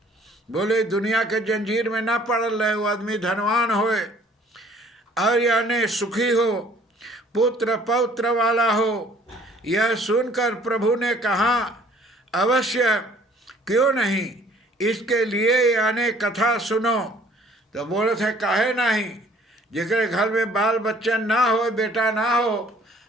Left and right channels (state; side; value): normal; both; correlation 0.57